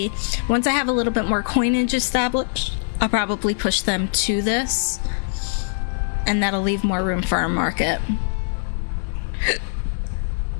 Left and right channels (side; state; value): right; silent; 64 dB below the other